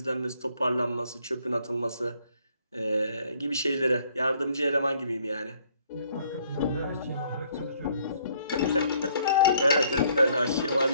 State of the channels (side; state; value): both; inverted; correlation -0.64